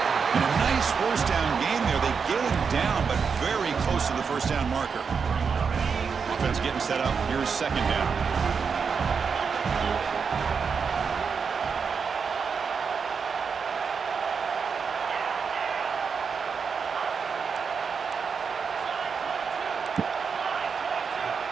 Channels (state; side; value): quieter; left; 5.8 dB